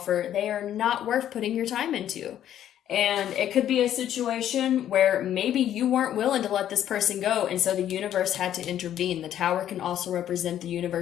they are not worth putting your time into. And it could be a situation where maybe you weren't willing to let this person go, and so the universe had to intervene. The tower can also represent the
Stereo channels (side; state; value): right; quieter; 11.0 dB